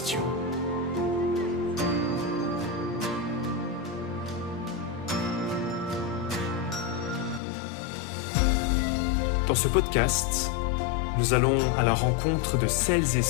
Dans ce podcast, nous allons à la rencontre de celles et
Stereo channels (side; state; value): right; drops out; at 7.4 s